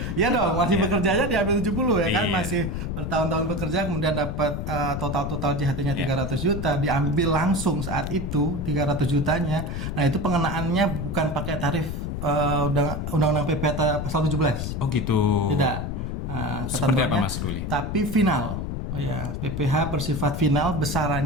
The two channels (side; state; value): left; noise; rumble, 4 dB below the sound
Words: ya dong, masih bekerjanya diambil 70 ya kan, masih bertahun-tahun bekerja kemudian dapat total JHT-nya 300 juta diambil langsung saat itu 300 jutanya. Nah, itu pengenaannya bukan pakai tarif undang-undang PPh pasal 17. Oh gitu. Tidak. Seperti apa Mas Ruli? Tapi final. Oh ya, PPh bersifat final,